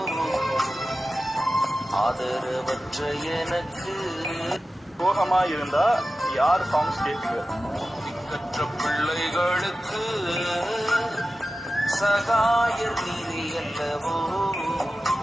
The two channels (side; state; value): both; normal; correlation 0.94